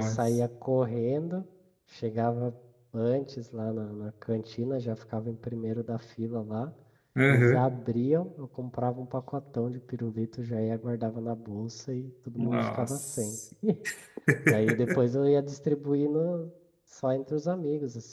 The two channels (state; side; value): identical; both; correlation 1.00